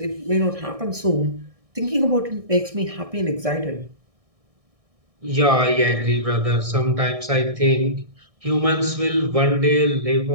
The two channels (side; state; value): left; late; 1.6 ms